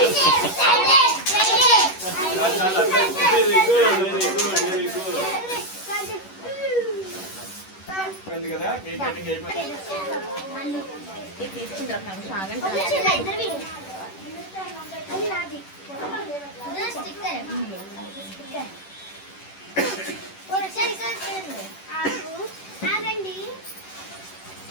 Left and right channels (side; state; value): right; late; 10 ms